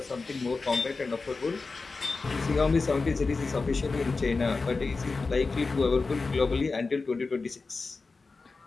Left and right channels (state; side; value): quieter; right; 4.0 dB